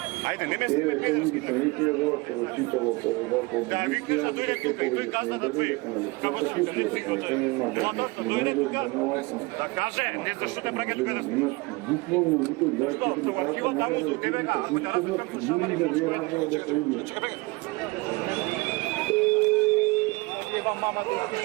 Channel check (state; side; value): quieter; left; 24.7 dB